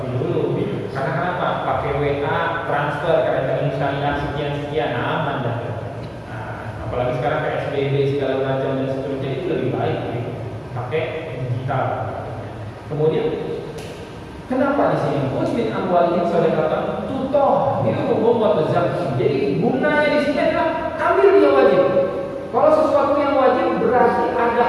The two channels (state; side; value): identical; both; correlation 1.00